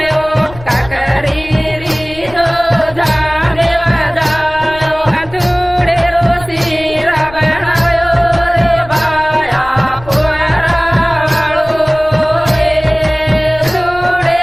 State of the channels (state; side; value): noise; left; rumble, 18 dB below the sound